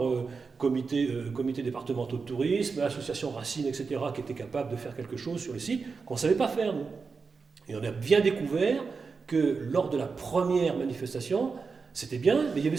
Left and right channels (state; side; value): quieter; left; 4.9 dB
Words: comité départementaux de tourisme, association Racine, etc., qui étaient capables de faire quelque chose sur le site qu'on ne savait pas faire, nous. Et on a bien découvert que lors de la première manifestation, c'était bien, mais il y avait